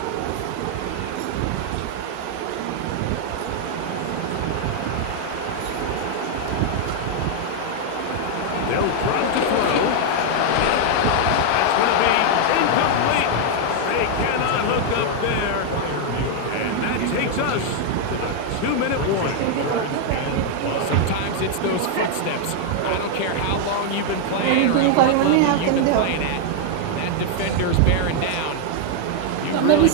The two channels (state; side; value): different; both; correlation 0.00